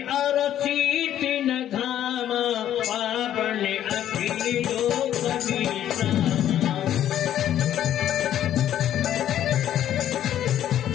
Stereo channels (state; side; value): quieter; right; 11.2 dB